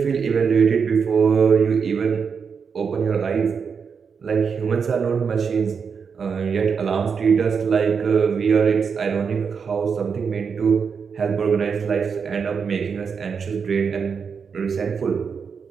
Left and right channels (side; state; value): left; quieter; 6.1 dB